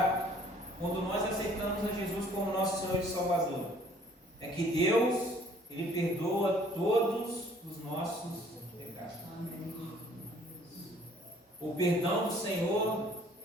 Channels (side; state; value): both; normal; correlation 0.57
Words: quando nós aceitamos a Jesus como nosso Senhor e Salvador, é que Deus, Ele perdoa todos os nossos pecados. O perdão do Senhor